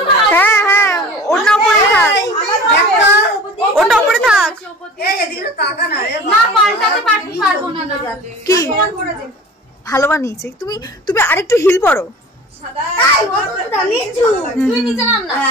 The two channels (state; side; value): normal; both; correlation 0.41